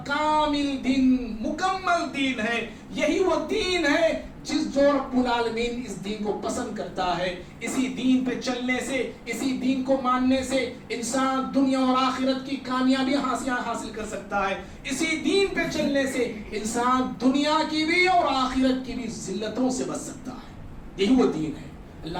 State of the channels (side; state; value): both; identical; correlation 1.00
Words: کامل دین، مکمل دین ہے، یہی وہ دین ہے جس جو رب العالمین اس دین کو پسند کرتا ہے۔ اسی دین پہ چلنے سے، اسی دین کو ماننے سے انسان دنیا اور آخرت کی کامیابی حاصل کر سکتا ہے۔ اسی دین پہ چلنے سے انسان دنیا کی بھی اور آخرت کی بھی ذلتوں سے بچ سکتا ہے۔ یہی وہ دین ہے۔